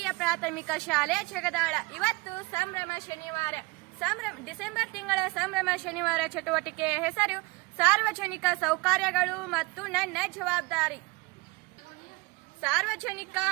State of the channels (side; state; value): left; quieter; 25.0 dB